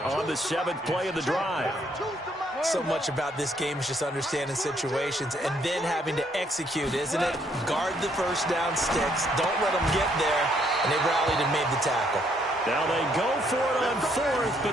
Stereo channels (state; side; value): normal; both; correlation 0.70